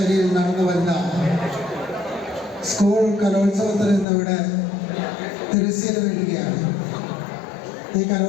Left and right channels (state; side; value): drops out; right; at 4.0 s